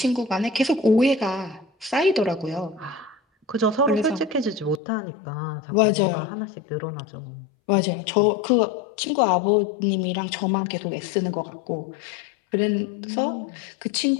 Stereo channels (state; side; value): drops out; right; at 4.8 s